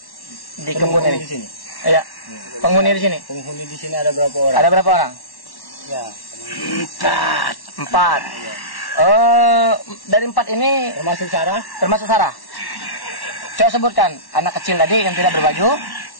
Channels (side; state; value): right; late; 1.1 ms